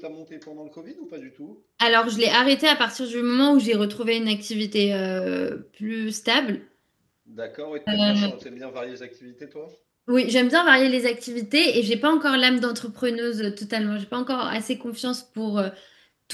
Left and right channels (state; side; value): identical; both; correlation 1.00